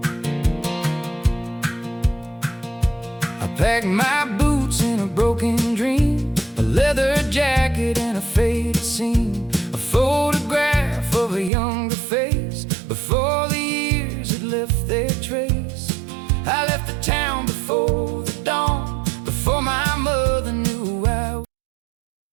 I packed my boots in a broken dream, a leather jacket and a faded scene, a photograph of a younger face before the years had left their trace. I left the town before the dawn, before my mother knew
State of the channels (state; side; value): drops out; left; at 11.5 s